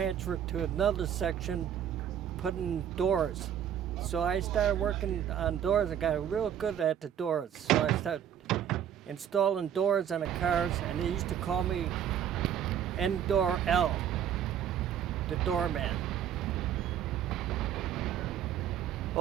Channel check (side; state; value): left; quieter; 9.6 dB